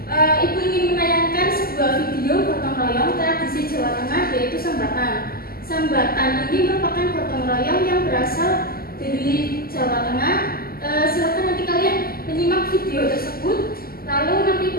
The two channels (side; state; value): right; late; 0.43 ms